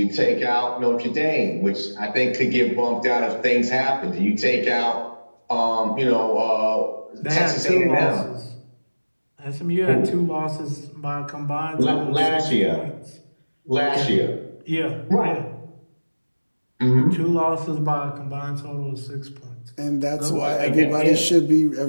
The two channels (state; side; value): inverted; both; correlation -1.00